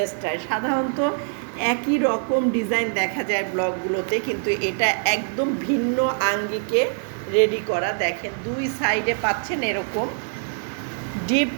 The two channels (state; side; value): silent; left; 61 dB below the other